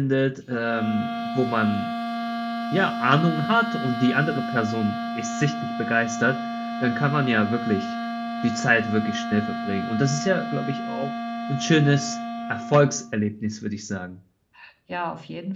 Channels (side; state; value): both; identical; correlation 1.00